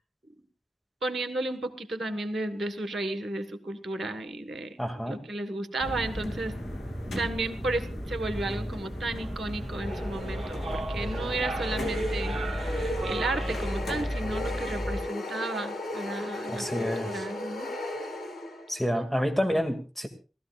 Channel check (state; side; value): normal; both; correlation 0.85